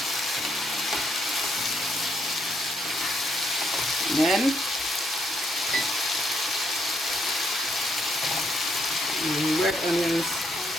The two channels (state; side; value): normal; both; correlation 0.74